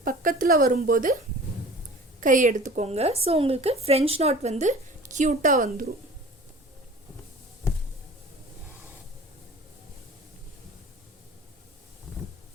பக்கத்தில் வரும்போது கை எடுத்துக்கோங்க. ஸோ உங்களுக்கு ஃப்ரெஞ்ச் நாட் வந்து க்யூட்டாக வந்துடும்.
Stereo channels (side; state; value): both; normal; correlation 0.43